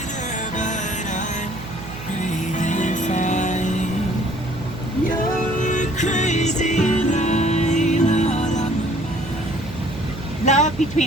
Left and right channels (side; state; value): right; noise; hum, 12 dB below the sound